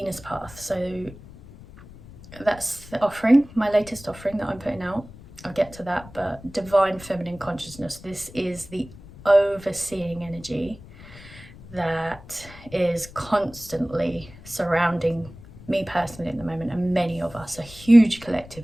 path. So that's the offering, my latest offering that I'm putting out. I'll get to that, but divine feminine consciousness, this is the overseeing energy that is constantly surrounding me personally at the moment, and many of us, a huge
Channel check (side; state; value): left; noise; rumble, 19 dB below the sound